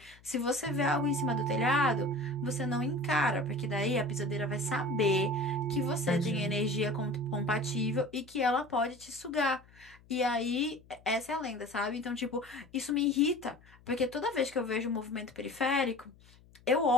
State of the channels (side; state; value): left; noise; hum, 26 dB below the sound